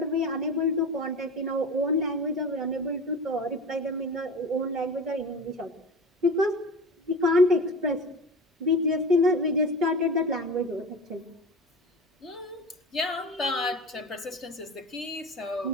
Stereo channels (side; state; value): both; normal; correlation 0.32